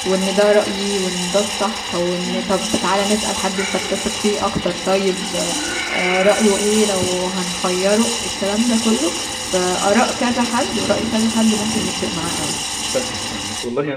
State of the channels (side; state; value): both; identical; correlation 1.00